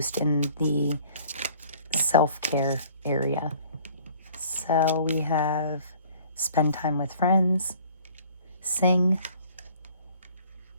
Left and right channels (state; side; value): inverted; both; correlation -0.53